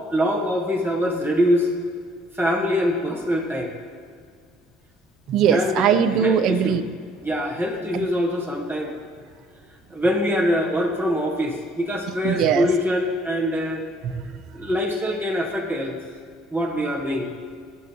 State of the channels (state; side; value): normal; both; correlation 0.61